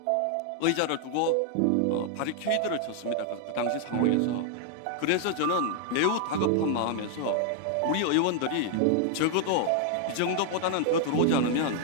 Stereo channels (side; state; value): both; different; correlation 0.00